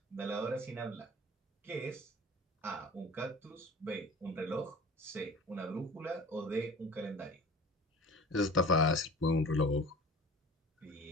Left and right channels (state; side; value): normal; both; correlation 0.41